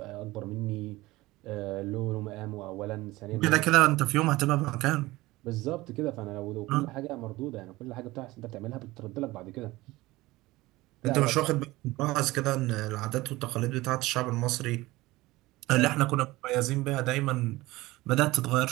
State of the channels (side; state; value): left; quieter; 19.3 dB